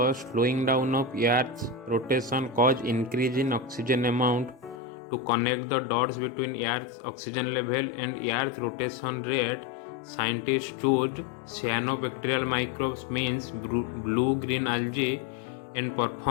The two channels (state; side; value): drops out; right; at 4.8 s